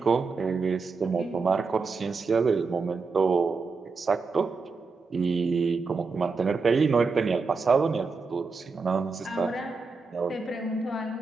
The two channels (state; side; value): quieter; left; 4.5 dB